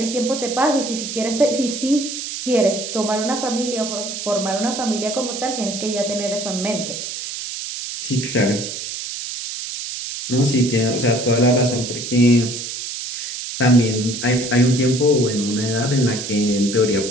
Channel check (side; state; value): right; noise; hiss, 6 dB below the sound